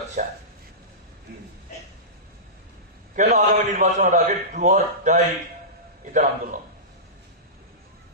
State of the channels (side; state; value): both; normal; correlation -0.19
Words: চায়? কেন আগামী নির্বাচনের আগে ডু অর ডাই এটার আন্দোলন?